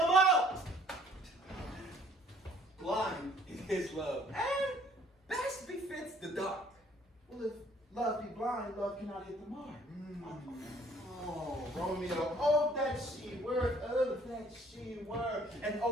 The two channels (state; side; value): normal; both; correlation 0.59